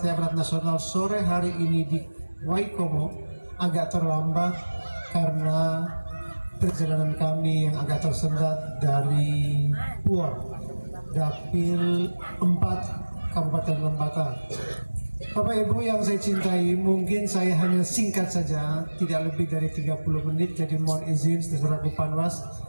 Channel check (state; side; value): inverted; both; correlation -1.00